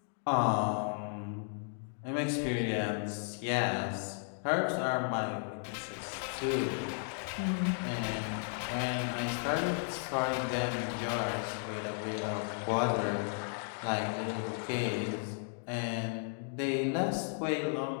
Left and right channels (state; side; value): silent; right; 55 dB below the other